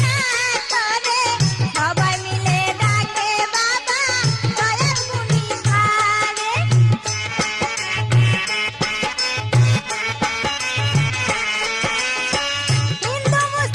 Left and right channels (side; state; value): both; identical; correlation 1.00